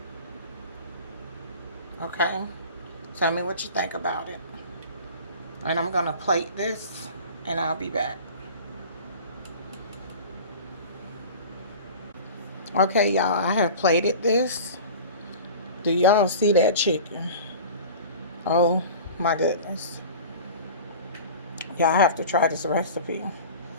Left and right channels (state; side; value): inverted; both; correlation -0.38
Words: Okay? Tell me what you think about it. And I'm going to plate this, and I'll be back. Okay, y'all, I have plated this. Do y'all see that chicken? Oh, my goodness. Y'all have to try this recipe.